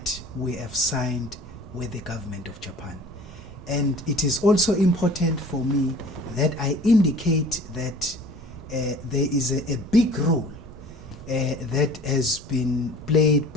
we have signed with the government of Japan. And it is also important for me that I indicate that there is a big role that has been played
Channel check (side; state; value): both; normal; correlation 0.46